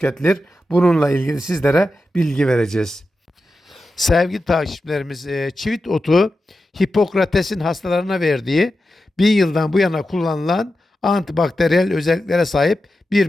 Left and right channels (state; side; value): normal; both; correlation 0.91